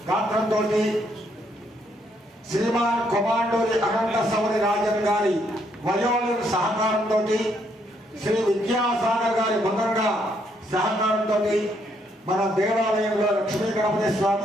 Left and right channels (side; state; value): both; normal; correlation 0.72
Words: గాత్రంతో శ్రీమాన్ కొమాండోరి అనంత సౌరి రాజన్ గారి వయోలిన్ సహకారంతో శ్రీ విద్యాసాగర్ గారి మృదంగ సహకారంతో మన దేవాలయంలో లక్ష్మీ గణపతి